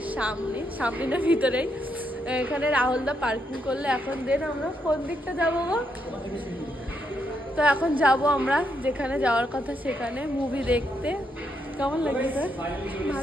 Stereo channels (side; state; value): both; normal; correlation 0.79